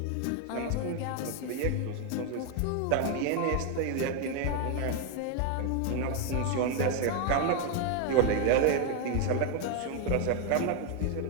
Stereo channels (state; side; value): different; both; correlation 0.01